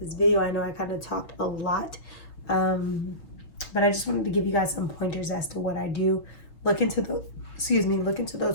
video. I know I kind of talked a lot, but I just wanted to give you guys some pointers as to what I do. Look into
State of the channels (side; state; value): right; late; 6.4 ms